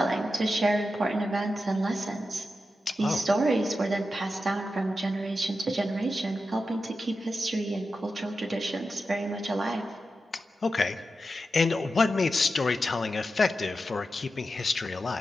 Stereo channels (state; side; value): normal; both; correlation 0.90